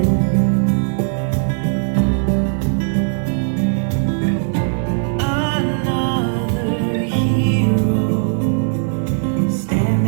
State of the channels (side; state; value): left; silent; 67 dB below the other